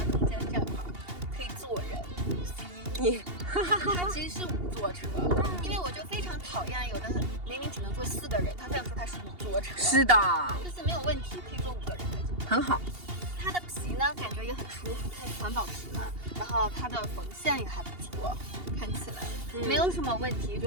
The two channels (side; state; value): left; late; 2.8 ms